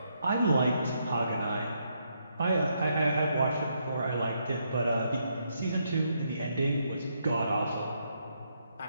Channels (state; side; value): inverted; both; correlation -0.77